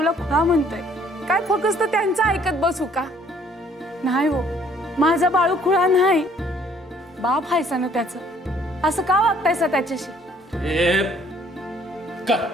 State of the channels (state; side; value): normal; both; correlation 0.61